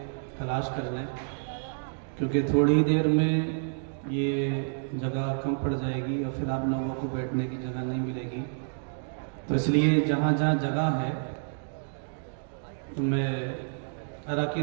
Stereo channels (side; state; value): left; silent; digital silence